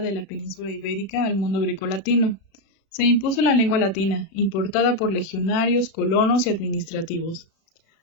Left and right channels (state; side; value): late; right; 36 ms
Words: la península ibérica al mundo grecolatino. Se impuso la lengua latina, importada por legionarios, colonos y administrativos.